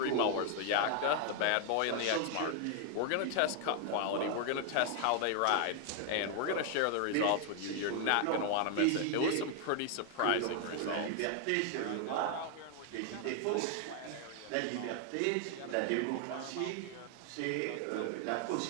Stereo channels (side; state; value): both; different; correlation 0.00